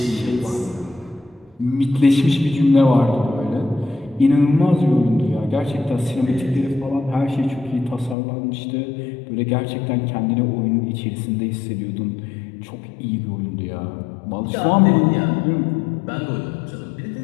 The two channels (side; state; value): right; drops out; at 8.2 s